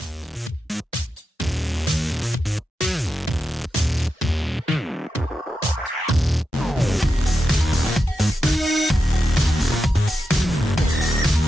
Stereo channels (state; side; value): normal; both; correlation 0.89